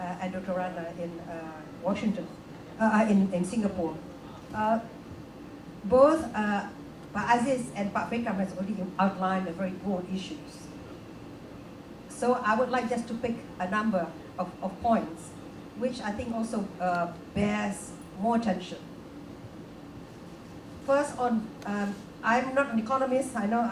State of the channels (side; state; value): both; identical; correlation 1.00